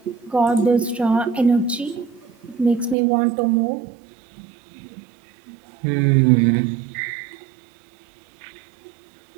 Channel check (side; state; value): left; drops out; at 3.0 s